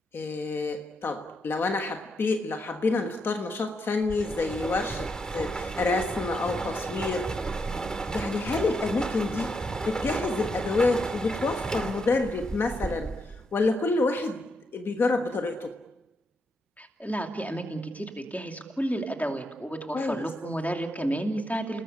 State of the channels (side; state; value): both; normal; correlation 0.81